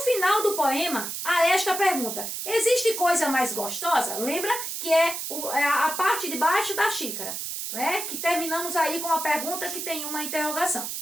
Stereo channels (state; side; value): noise; right; hiss, 5 dB below the sound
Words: do poema, há esta pergunta. Existe coisa mais gostosa? Lembra que é a parte de baixo da xícara, né? Que terminamos aí com a pergunta que tem uma interrogação.